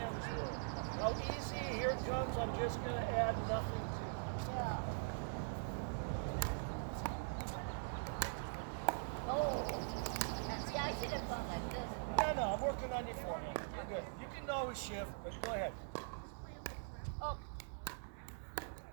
were, how easy, here it comes, I'm just going to add nothing to it. Yeah. Oh. See, I should have gone like this. No, I'm working on your forehand. You're good. You can always shift, but go ahead. Oh.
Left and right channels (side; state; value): left; silent; digital silence